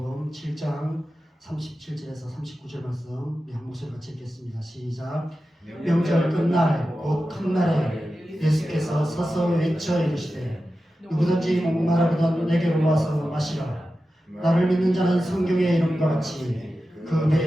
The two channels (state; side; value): normal; both; correlation 0.93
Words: 7장 37절에서 39절 말씀 우리 한 목소리 같이 읽겠습니다. 시작. 명절 끝날 곧 큰 날에 예수께서 서서 외쳐 이르시되 누구든지 목마르거든 내게로 와서 마시라. 나를 믿는 자는 성경의 이름과 같이 그